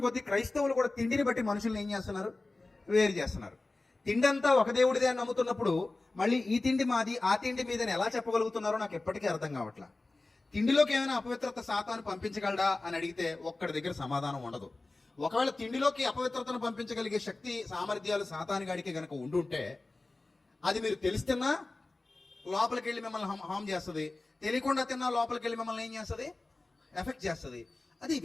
కొద్దీ క్రైస్తవులు కూడా తిండిని బట్టి మనుషుల్ని ఏం చేస్తున్నారు? వేరు చేస్తున్నారు. తిండి అంతా ఒక దేవుడిదే అని నమ్ముతున్నప్పుడు మళ్ళీ ఈ తిండి మాది ఆ తిండి మీదని ఎలా చెప్పగలుగుతున్నారో నాకు ఎప్పటికీ అర్థం కావట్లా. తిండిలోకి ఏమైనా అపవిత్రత సాతాను పంపించగలడా అని అడిగితే ఒక్కడి దగ్గర సమాధానం ఉండదు. ఒకవేళ తిండిలోకి అపవిత్రతను పంపించగలిగే శక్తి సామర్థ్యాలు సాతానుగాడికి గనక ఉండుంటే అది మీరు తెలిస్తున్నా లోపలికి వెళ్ళి మిమ్మల్ని హామ్ చేస్తుంది, తెలియకుండా తిన్నా లోపలికి వెళ్ళి మిమ్మల్ని ఏం చేస్తుంది? ఎఫెక్ట్ చేస్తుంది. అది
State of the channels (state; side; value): quieter; right; 3.2 dB